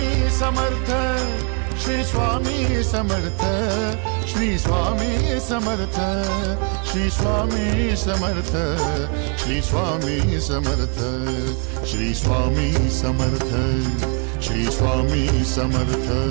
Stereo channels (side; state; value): left; quieter; 37.6 dB